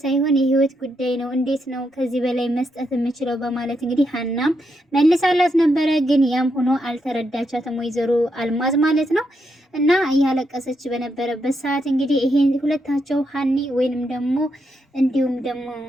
ሳይሆን የህይወት ጉዳይ ነው፣ እንዴት ነው ከዚህ በላይ መስጠት የምችለው በማለት እንግዲህ ሀናም መልሳላት ነበረ። ግን ያም ሆኖ አልተረዳቻትም ወይዘሮ አልማዝ ማለት ነው። እና እያለቀሰች በነበረበት ሰዓት እንግዲህ ይሄ ሁለታቸው ሀኒ ወይንም ደግሞ እንዲሁም ደግሞ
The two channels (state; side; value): normal; both; correlation 0.81